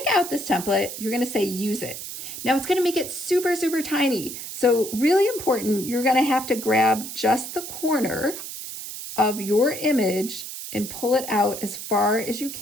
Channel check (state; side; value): noise; right; hiss, 9 dB below the sound